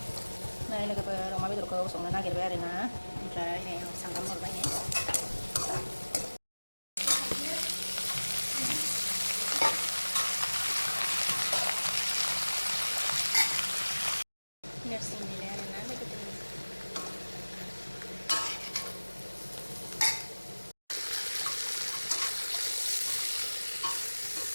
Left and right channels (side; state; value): both; inverted; correlation -1.00